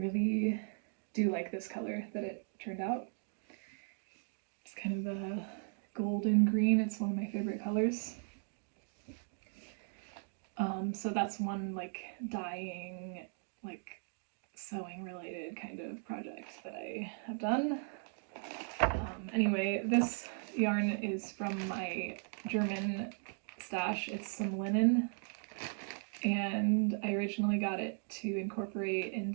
do like this color that it turned out. It's kind of a golden green. It's one of my favorite colors. So that's one like dyeing, like sewing related kind of project that I have done. Anyway, this yarn is from my German stash. It's some linen, and I originally got it to incorporate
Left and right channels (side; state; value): left; silent; 53 dB below the other